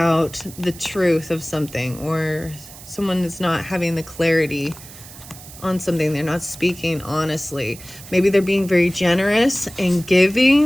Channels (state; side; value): noise; right; hiss, 17 dB below the sound